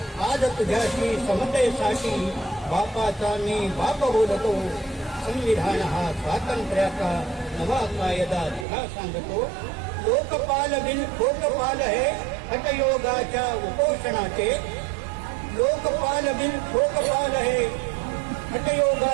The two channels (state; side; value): drops out; left; at 8.7 s